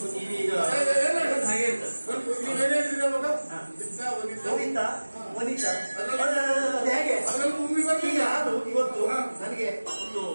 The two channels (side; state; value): both; inverted; correlation -1.00